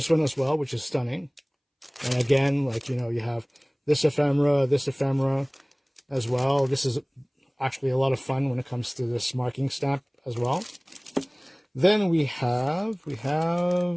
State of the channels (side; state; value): both; identical; correlation 1.00